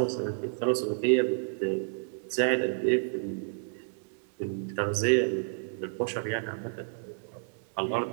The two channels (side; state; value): left; silent; digital silence